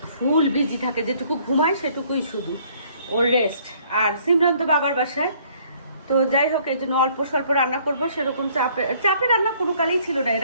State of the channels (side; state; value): both; inverted; correlation -0.61